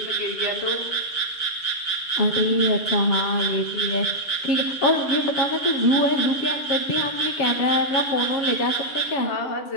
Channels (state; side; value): late; right; 7.1 ms